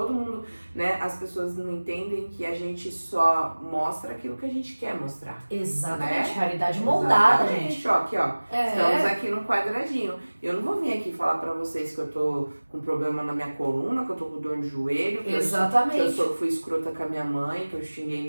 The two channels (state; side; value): inverted; both; correlation -1.00